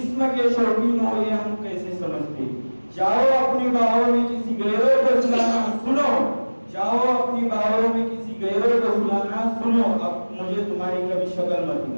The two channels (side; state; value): both; inverted; correlation -1.00